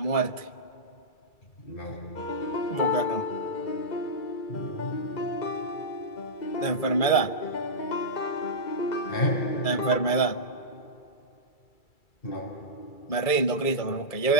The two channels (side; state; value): right; late; 2.3 ms